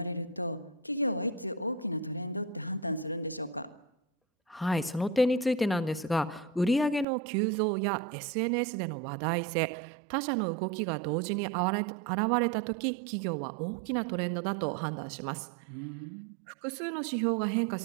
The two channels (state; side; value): drops out; left; at 7.1 s